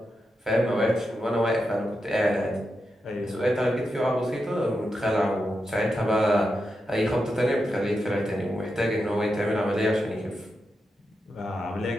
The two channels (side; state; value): both; normal; correlation 0.87